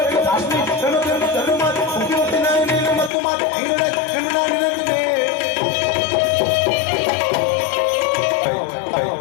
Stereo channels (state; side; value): drops out; right; at 3.1 s